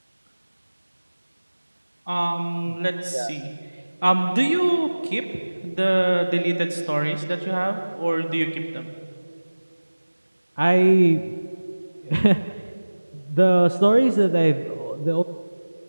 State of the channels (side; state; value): both; inverted; correlation -1.00